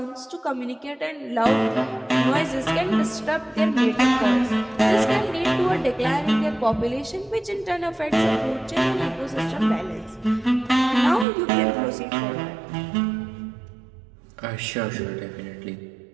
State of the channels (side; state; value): left; drops out; at 11.2 s